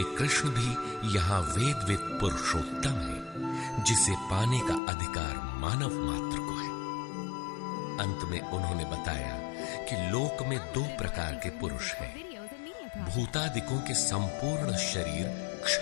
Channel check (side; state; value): right; drops out; at 4.8 s